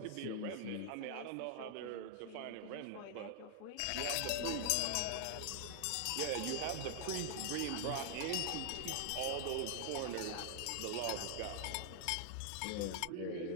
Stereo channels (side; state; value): both; different; correlation 0.00